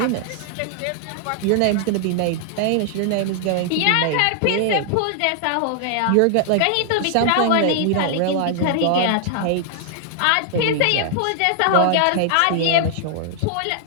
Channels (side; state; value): both; different; correlation -0.01